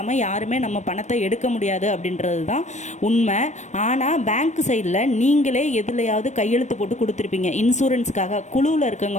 யாருமே நம்ம பணத்தை எடுக்க முடியாது அப்படின்றது தான் உண்மை. ஆனால் பேங்க் சைடில் நீங்களே எதுலையாவது கையெழுத்து போட்டு கொடுத்துருப்பீங்க. இன்சூரன்ஸுக்காக குழுவில்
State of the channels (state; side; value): late; right; 0.34 ms